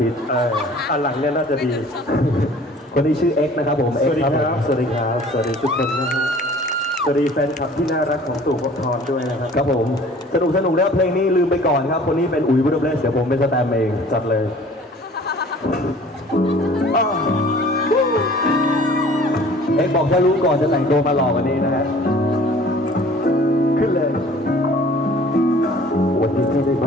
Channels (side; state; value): both; normal; correlation 0.49